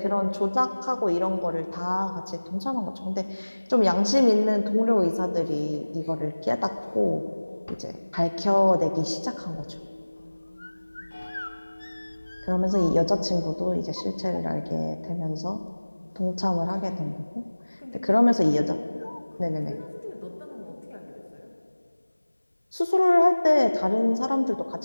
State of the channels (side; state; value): both; inverted; correlation -1.00